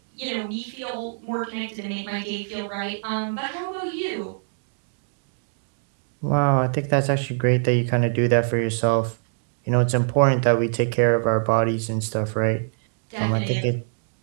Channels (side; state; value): left; silent; digital silence